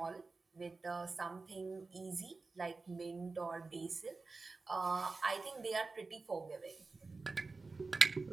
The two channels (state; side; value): quieter; left; 3.9 dB